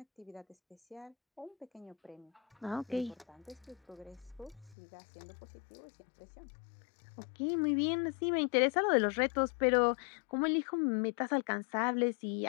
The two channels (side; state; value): right; drops out; at 4.8 s